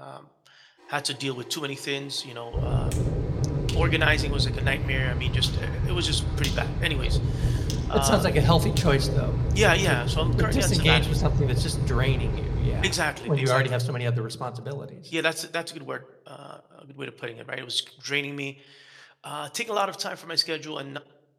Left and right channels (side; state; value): both; identical; correlation 1.00